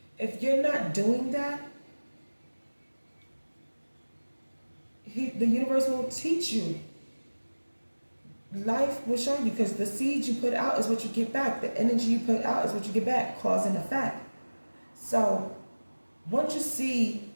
If you're not doing that, the universe will teach you. Life will show you, because the seeds you put out is what you get back. The energy you put out is what you get back, cause and effect. So once you see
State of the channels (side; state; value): both; inverted; correlation -1.00